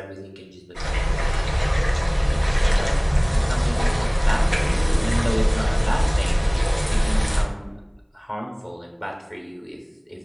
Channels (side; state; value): both; identical; correlation 1.00